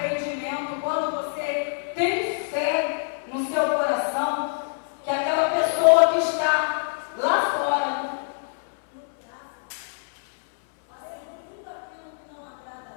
Quando você tem fé no seu coração, que aquela pessoa que está lá fora fazendo tudo aquilo que não agrada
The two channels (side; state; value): right; silent; 61 dB below the other